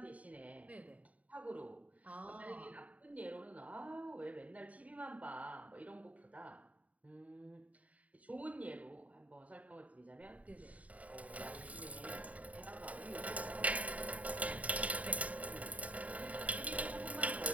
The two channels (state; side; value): late; left; 0.069 ms